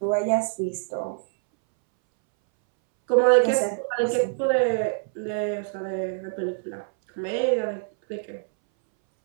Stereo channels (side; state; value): left; silent; 62 dB below the other